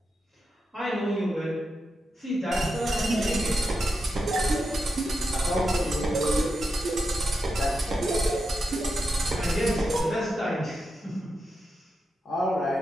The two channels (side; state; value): both; normal; correlation 0.87